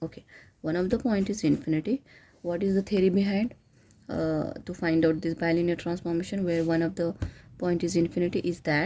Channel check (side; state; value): both; identical; correlation 1.00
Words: Okay, one of the point is infinity. What is the theory behind to find out this bilinear transformation where one of the point is infinity is